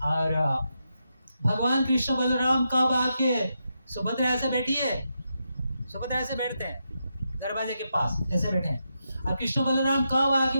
और भगवान कृष्ण बलराम कब आके, सुभद्रा ऐसे बैठी है, सुभद्रा ऐसे बैठते हैं दरवाजे के पास, ऐसे बैठे हैं, और कृष्ण बलराम कब आके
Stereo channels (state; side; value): inverted; both; correlation -0.85